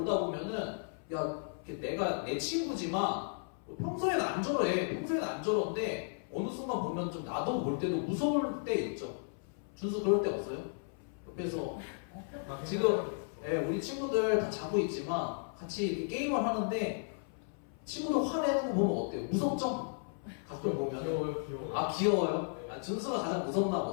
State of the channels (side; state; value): right; silent; 55 dB below the other